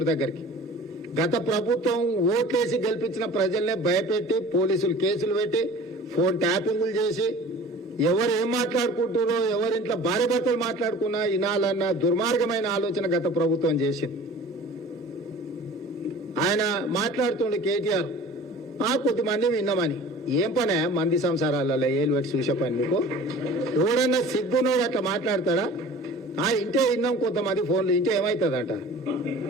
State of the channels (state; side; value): normal; both; correlation 0.43